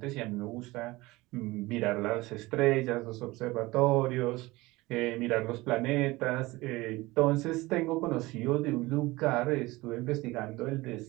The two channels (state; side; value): quieter; left; 20.7 dB